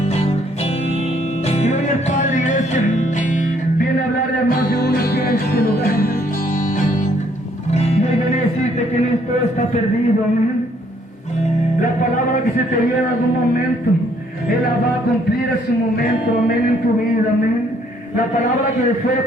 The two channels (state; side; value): normal; both; correlation 0.66